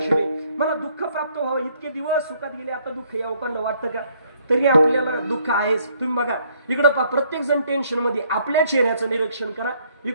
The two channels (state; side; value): inverted; both; correlation -0.66